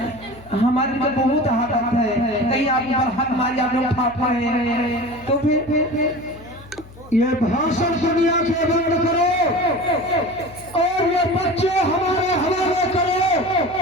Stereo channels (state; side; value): noise; left; hum, 20 dB below the sound